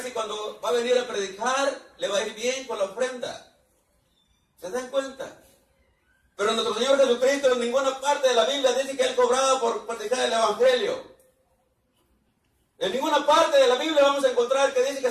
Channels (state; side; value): identical; both; correlation 1.00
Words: si cuando va a venir a predicar le va a ir bien con la ofrenda. ¿Se dan cuenta? Pero nuestro Señor Jesucristo en ninguna parte de la Biblia dice que Él cobraba por predicar el Evangelio. En ninguna parte de la Biblia vamos a encontrar que dice